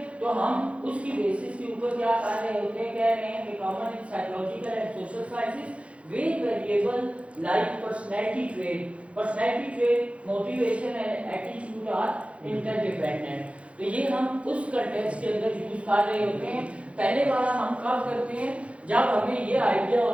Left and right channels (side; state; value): left; late; 0.062 ms